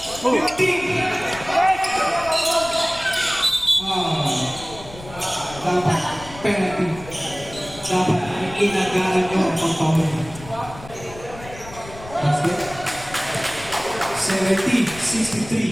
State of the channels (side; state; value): left; noise; rumble, 16 dB below the sound